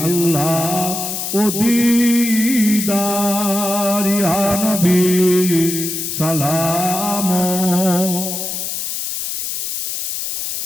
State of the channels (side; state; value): left; noise; hiss, 4 dB below the sound